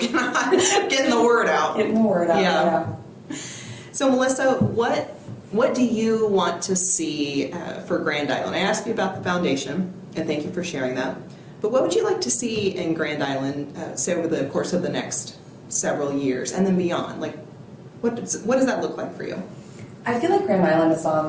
on getting the word out. Getting the word out. Yeah. So Melissa, what do you want to see for Grand Island? I asked you about the foundation, and thank you for sharing that. But what would you like to see in Grand Island, say over the course of the next several years and then beyond? Like, what does that look like for you? I feel like Grand Island is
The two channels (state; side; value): identical; both; correlation 1.00